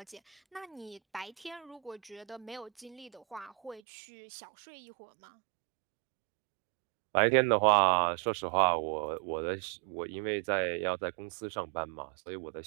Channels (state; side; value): drops out; left; at 3.8 s